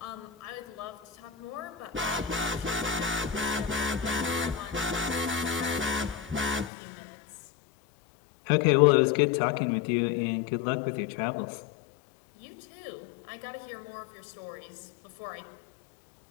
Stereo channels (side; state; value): right; drops out; at 6.7 s